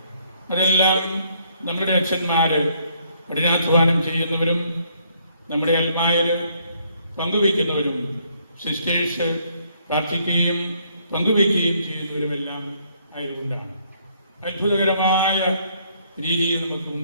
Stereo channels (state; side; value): inverted; both; correlation -0.68